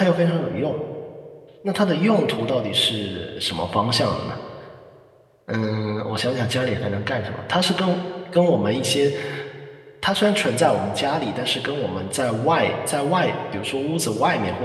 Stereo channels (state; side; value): identical; both; correlation 1.00